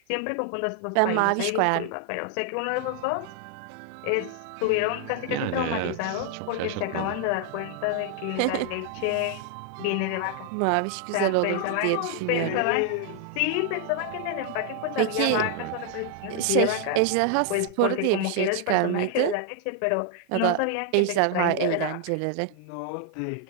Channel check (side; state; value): both; different; correlation 0.00